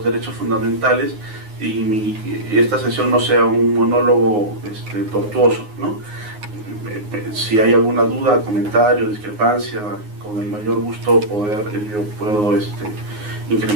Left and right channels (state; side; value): late; left; 9.6 ms